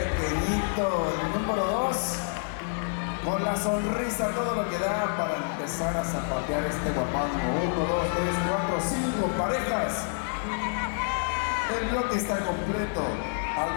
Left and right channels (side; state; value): right; silent; digital silence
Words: El número 2, con la sonrisa, todo lo que da para empezar a zapatear este guapango. 1, 2, 3, 4, 5 parejas. El bloque está completo.